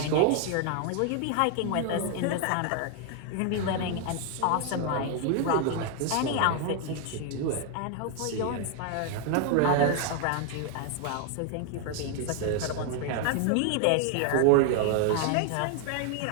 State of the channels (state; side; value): different; both; correlation 0.00